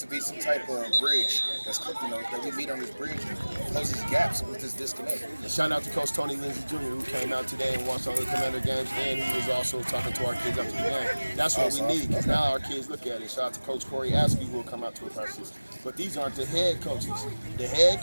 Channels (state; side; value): inverted; both; correlation -1.00